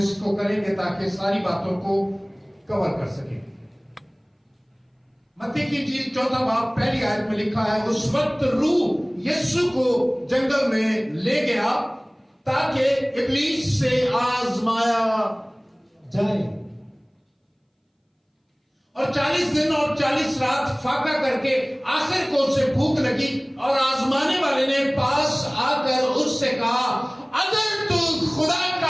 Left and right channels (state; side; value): identical; both; correlation 1.00